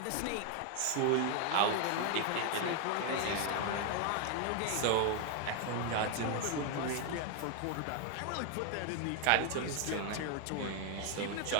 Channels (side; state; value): both; different; correlation 0.01